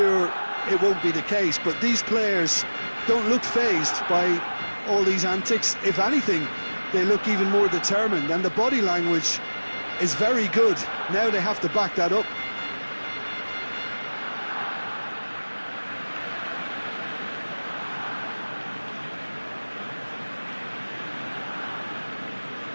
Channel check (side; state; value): both; inverted; correlation -1.00